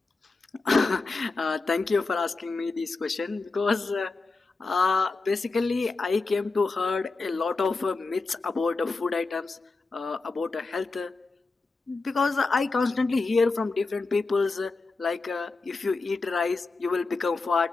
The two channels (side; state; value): right; quieter; 3.8 dB